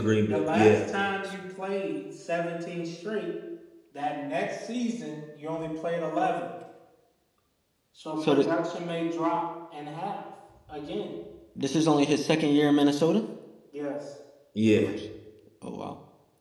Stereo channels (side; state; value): both; identical; correlation 1.00